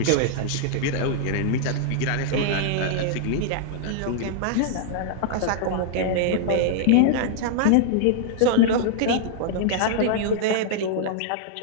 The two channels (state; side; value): different; both; correlation -0.01